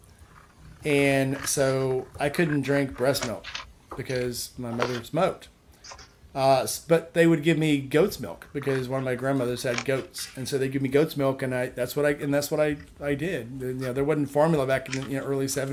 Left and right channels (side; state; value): both; identical; correlation 1.00